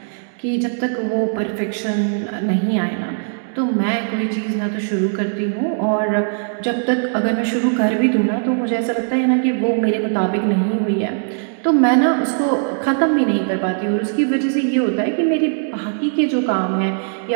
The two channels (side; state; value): left; silent; digital silence